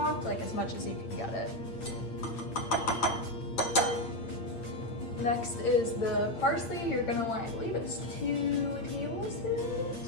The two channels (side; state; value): right; late; 8.8 ms